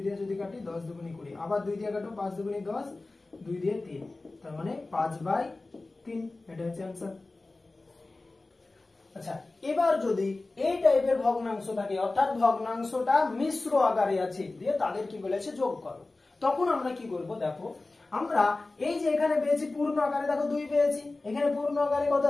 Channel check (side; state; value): right; quieter; 3.2 dB